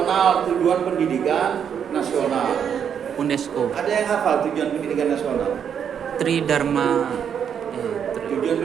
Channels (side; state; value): left; quieter; 8.0 dB